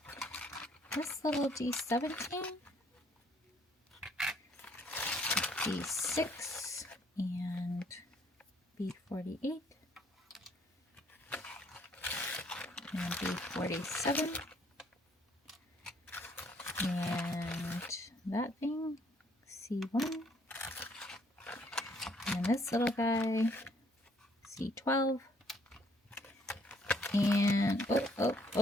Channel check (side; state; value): both; normal; correlation 0.64